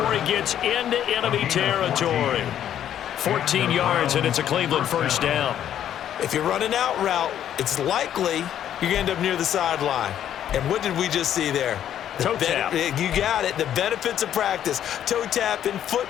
he gets into enemy territory. 14 yards, and it's a Cleveland 1st down. If you're running out route, it's likely you're going to end up near the sideline. And what did we just see there? Toe tap. You got it. The benefits of practice. Toe tapping, foot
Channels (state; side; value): quieter; right; 10.5 dB